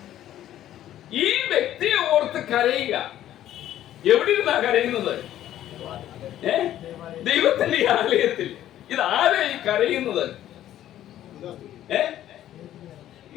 ഈ വ്യക്തിയെ ഓർത്ത് കരയുക. എവിടെ ഇരുന്നാ കരയുന്നത്? ദൈവത്തിന്റെ ആലയത്തിൽ. ഇത് ആരാ ഈ കരയുന്നത്?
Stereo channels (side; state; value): right; quieter; 12.3 dB